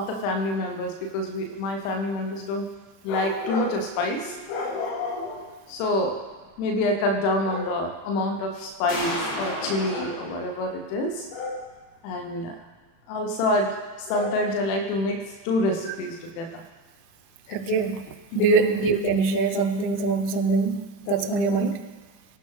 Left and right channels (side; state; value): right; late; 36 ms